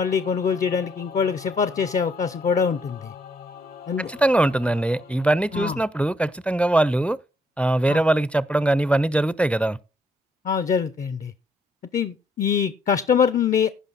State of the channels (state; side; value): normal; both; correlation 0.70